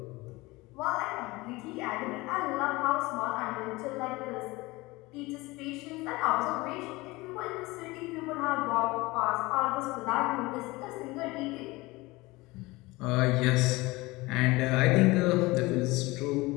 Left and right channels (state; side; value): quieter; right; 21.8 dB